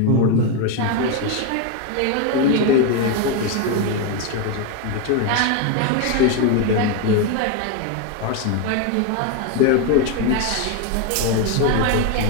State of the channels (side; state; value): both; different; correlation 0.02